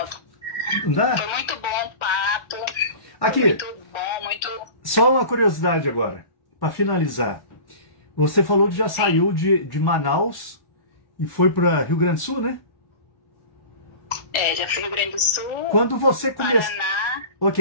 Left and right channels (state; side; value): late; right; 1.3 ms